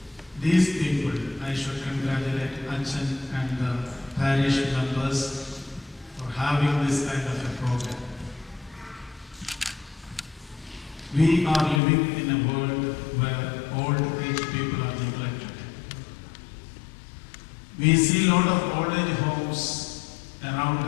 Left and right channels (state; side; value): drops out; right; at 11.8 s